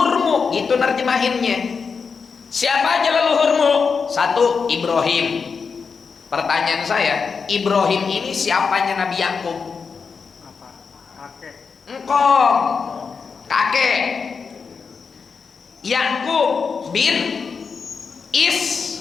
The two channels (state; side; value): quieter; right; 5.5 dB